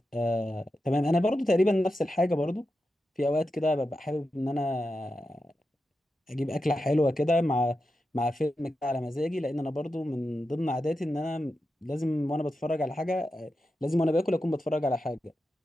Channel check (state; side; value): normal; both; correlation 0.89